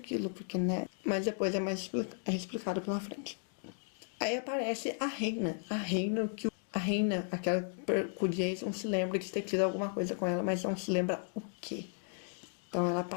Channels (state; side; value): silent; right; 54 dB below the other